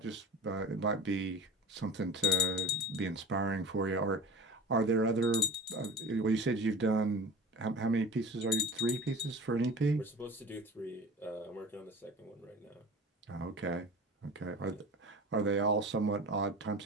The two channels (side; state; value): both; normal; correlation 0.36